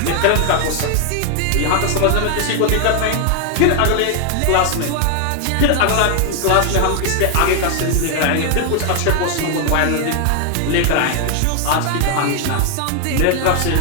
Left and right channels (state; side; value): different; both; correlation 0.00